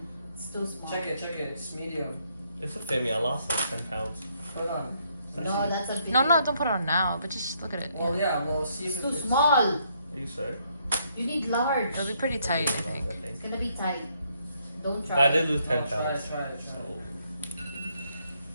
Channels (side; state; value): both; inverted; correlation -0.72